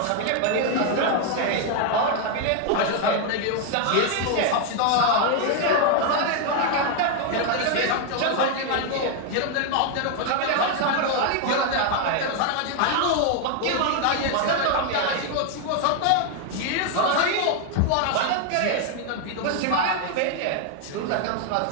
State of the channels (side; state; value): both; different; correlation 0.01